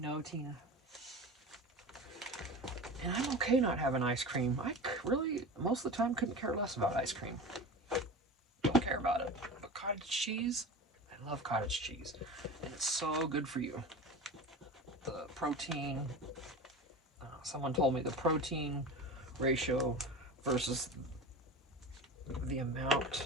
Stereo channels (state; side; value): normal; both; correlation 0.30